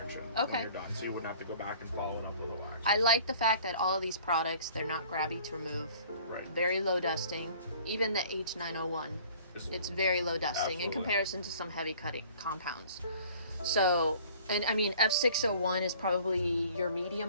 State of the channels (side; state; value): both; inverted; correlation -0.51